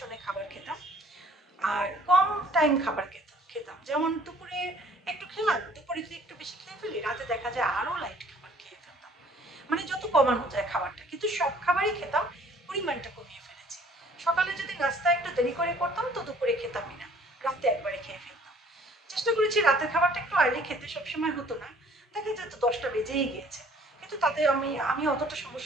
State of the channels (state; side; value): normal; both; correlation 0.56